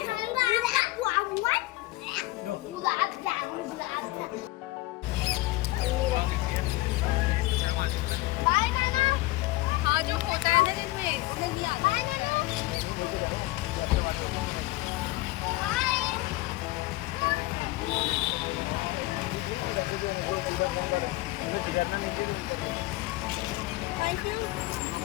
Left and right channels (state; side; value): quieter; right; 19.3 dB